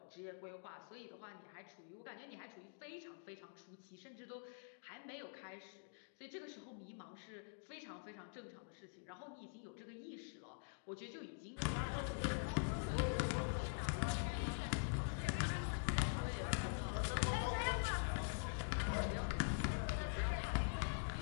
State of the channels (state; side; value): silent; right; digital silence